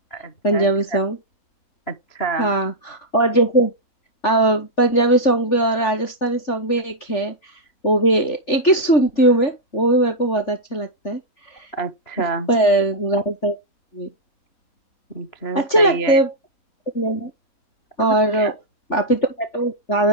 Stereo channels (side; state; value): right; late; 3.5 ms